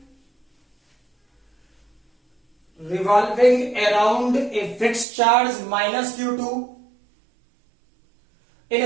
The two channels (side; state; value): left; drops out; at 5.1 s